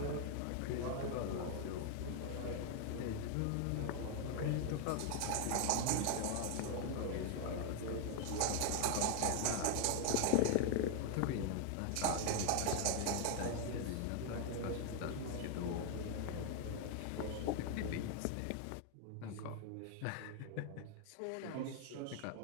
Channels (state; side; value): different; both; correlation 0.00